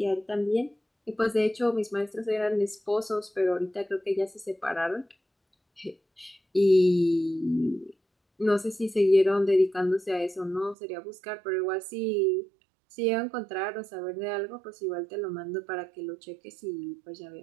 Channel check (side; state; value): left; drops out; at 10.8 s